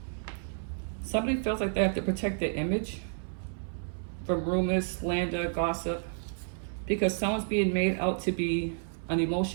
Somebody feels like they have to protect their image from rumors, slander, gossip, because someone's being made out to be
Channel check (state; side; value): silent; left; 57 dB below the other